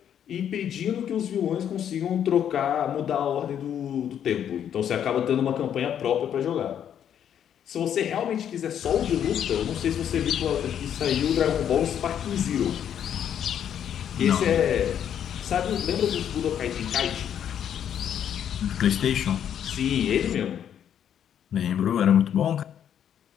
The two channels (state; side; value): quieter; right; 9.4 dB